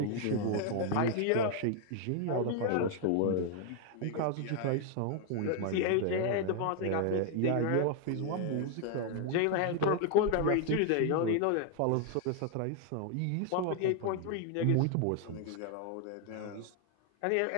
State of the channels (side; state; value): both; different; correlation 0.00